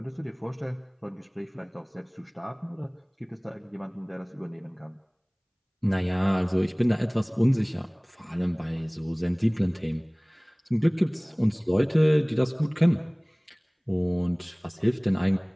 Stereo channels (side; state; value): both; identical; correlation 1.00